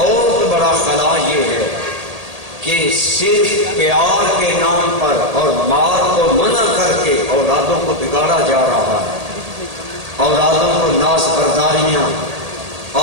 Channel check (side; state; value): left; late; 1.8 ms